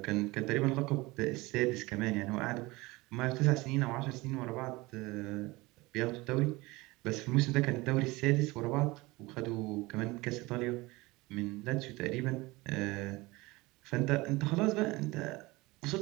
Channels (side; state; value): left; quieter; 22.0 dB